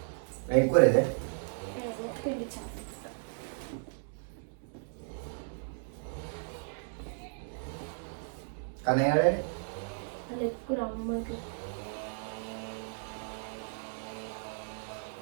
ఎక్కువ లేదే కానీ ఎక్కువ అమ్మకి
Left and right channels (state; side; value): silent; left; digital silence